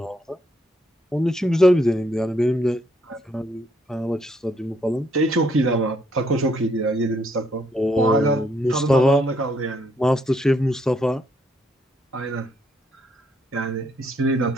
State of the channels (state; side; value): normal; both; correlation 0.72